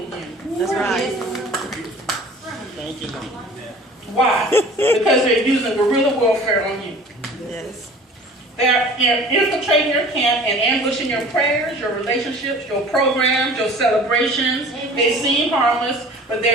you? That's right. Thank you, Lord. Why? Because they're using guerrilla warfare on you. Yes. They're infiltrating your camp and ambushing your prayers, your relationships, your programs, your celebrations. They seem harmless, but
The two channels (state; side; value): normal; both; correlation 0.45